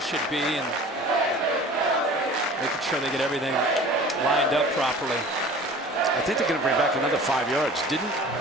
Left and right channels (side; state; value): both; normal; correlation 0.43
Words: be and making sure they get everything lined up properly. I think they're going to bring back another 5 yards. Didn't